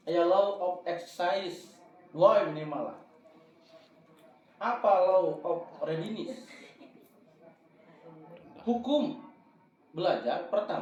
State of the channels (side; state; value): both; identical; correlation 1.00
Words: Aya law of exercise. Dua minimal lah. Apa law of readiness? Hukum belajar